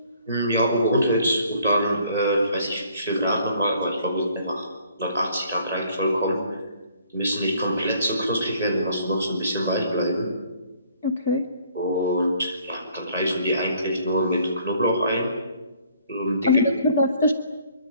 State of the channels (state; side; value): inverted; both; correlation -0.61